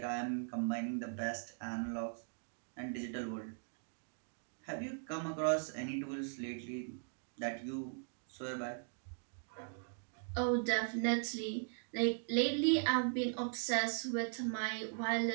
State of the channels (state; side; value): silent; left; digital silence